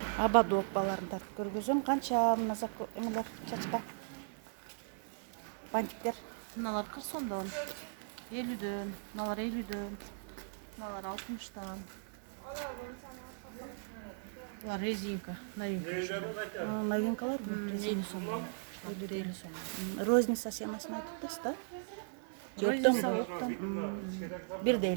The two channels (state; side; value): silent; left; 53 dB below the other